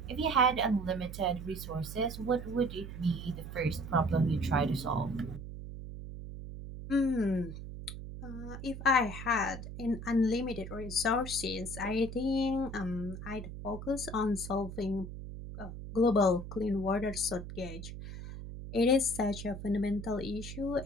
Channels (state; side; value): noise; right; hum, 9 dB below the sound